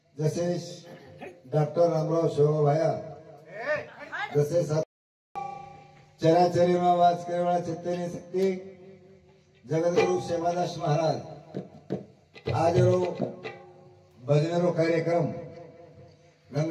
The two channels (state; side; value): identical; both; correlation 1.00